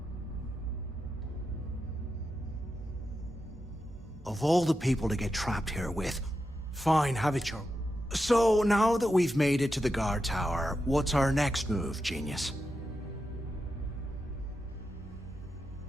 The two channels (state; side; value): normal; both; correlation 0.88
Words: Of all the people to get trapped here with, fine, have it your... So, now that we've made it to the guard tower, what's our next move, genius?